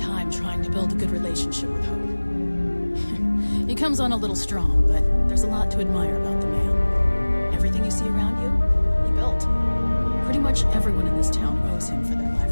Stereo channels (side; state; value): both; inverted; correlation -1.00